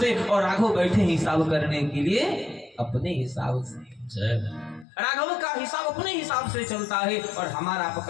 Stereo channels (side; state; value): right; drops out; at 4.9 s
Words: और राघव बैठे हिसाब करने के लिए अपने हिसाब से। राघव का हिसाब अपने हिसाब से चलता है और हमारा